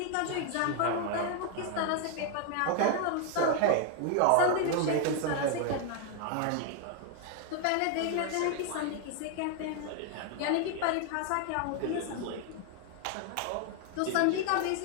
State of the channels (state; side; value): different; both; correlation 0.00